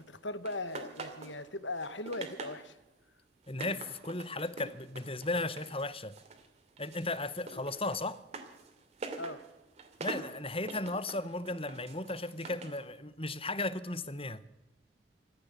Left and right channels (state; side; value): normal; both; correlation 0.11